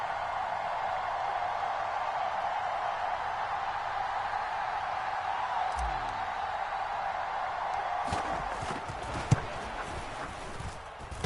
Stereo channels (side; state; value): both; identical; correlation 1.00